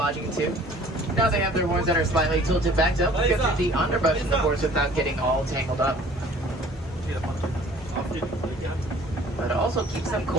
too. Now they have their horns that are slightly tilted back to help get through the underbrush in the forest without getting all tangled up. But it also keeps them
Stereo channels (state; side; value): normal; both; correlation 0.52